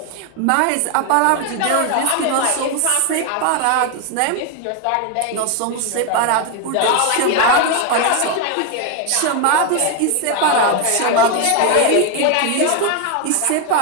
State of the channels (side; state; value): both; different; correlation 0.01